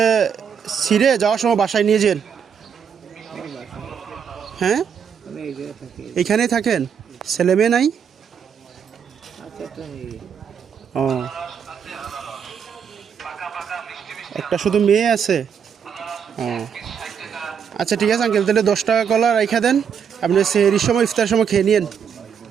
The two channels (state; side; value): quieter; left; 7.4 dB